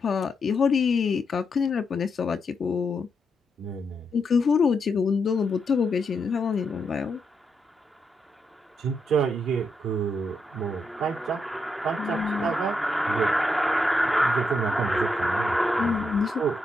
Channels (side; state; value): both; normal; correlation 0.81